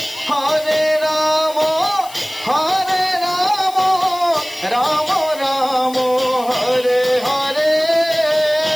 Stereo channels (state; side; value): noise; left; hiss, 18 dB below the sound